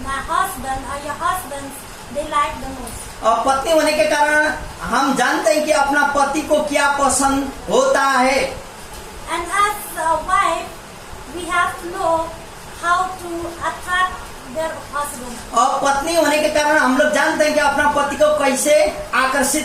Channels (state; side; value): identical; both; correlation 1.00